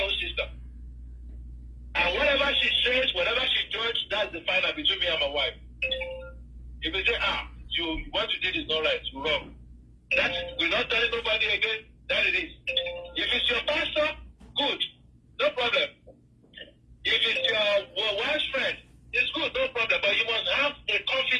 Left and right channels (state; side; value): identical; both; correlation 1.00